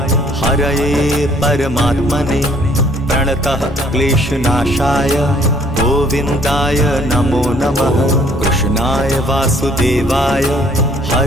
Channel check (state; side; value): normal; both; correlation 0.61